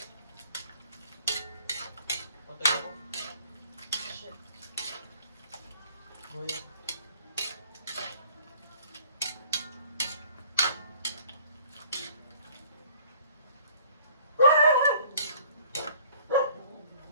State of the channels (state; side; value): inverted; both; correlation -0.56